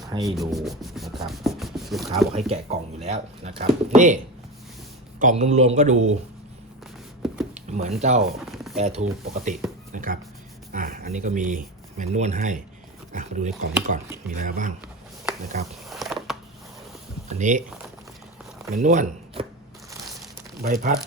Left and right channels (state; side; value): normal; both; correlation 0.23